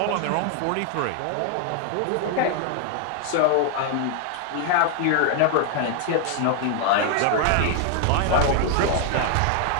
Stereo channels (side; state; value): both; different; correlation 0.01